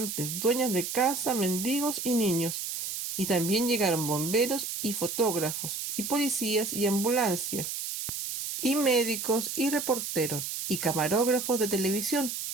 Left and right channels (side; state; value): right; noise; hiss, 5 dB below the sound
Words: dueñas de casa, mendigos y niños. Y también llegaron bomberos y fotógrafos, y policías y ambulancias, y médicos y reporteros, y camarógrafos de televisión.